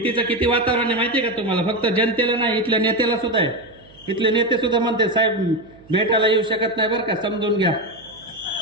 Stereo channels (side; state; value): right; noise; hum, 27 dB below the sound